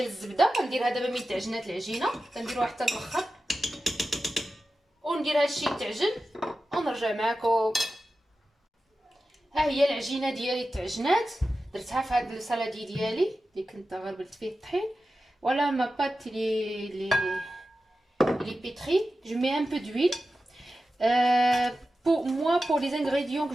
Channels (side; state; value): both; normal; correlation 0.93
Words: الزبده. غنديرها دابا من تعجنات العجينه، كنديروها حتى الاخر وندير هادشي يتعجن ونرجع معكم. ها هي العجينه ديالي تعجنات، درتها في هاد السالادي ديالي اللي كنت غربلت فيه الطحين. ولا ما بات لي pétrie. Je mets un peu d'huile. Pour moi, pour les ingrédients que